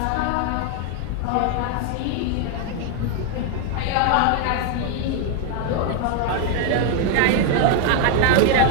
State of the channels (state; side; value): different; both; correlation 0.00